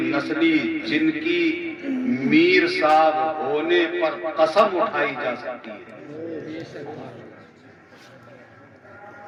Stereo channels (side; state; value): both; identical; correlation 1.00